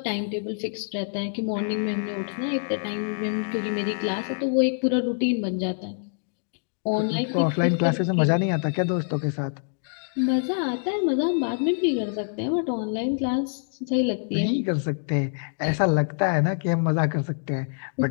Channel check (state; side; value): silent; right; digital silence